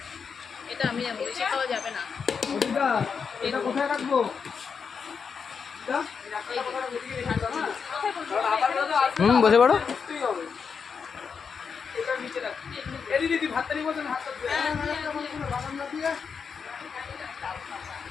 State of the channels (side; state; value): right; quieter; 6.0 dB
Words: এটা আমি যাবো, বেশি খাওয়া যাবে না। দিদা এটা কোথায় রাখবো? বসে পড়ো।